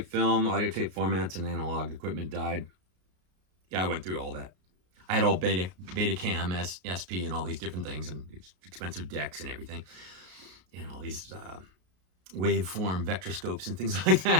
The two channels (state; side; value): late; left; 33 ms